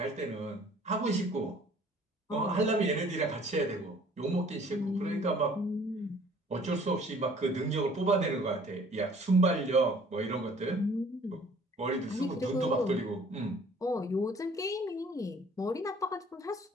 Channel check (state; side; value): normal; both; correlation 0.54